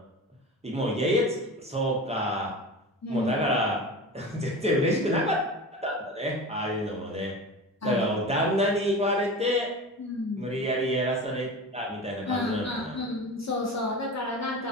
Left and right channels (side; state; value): both; normal; correlation 0.31